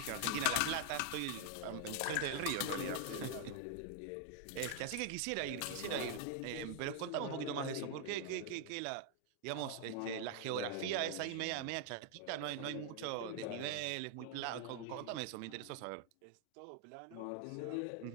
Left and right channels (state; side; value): different; both; correlation 0.00